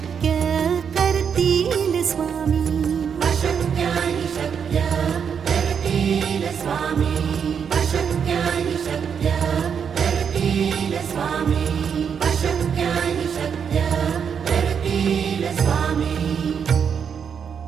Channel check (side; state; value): left; quieter; 7.1 dB